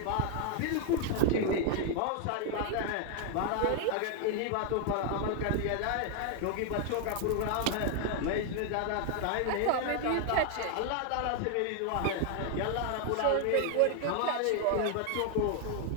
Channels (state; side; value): different; both; correlation 0.00